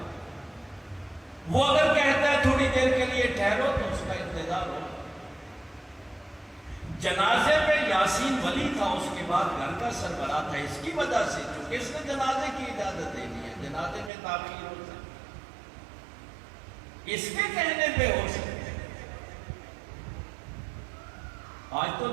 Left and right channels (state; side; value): drops out; left; at 14.1 s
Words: وہ اگر کہتا ہے تھوڑی دیر کے لیے ٹھہرو تو اس کا انتظار ہو. جنازے میں یاسین ولی تھا، اس کے بعد گھر کا سربراہ تھا، اس کی وجہ سے چونکہ اس نے جنازے کی اجازت دے دی ہے، جنازے میں تاخیر ہو سکتی، اس کے کہنے پہ ہو سکتے. آج تو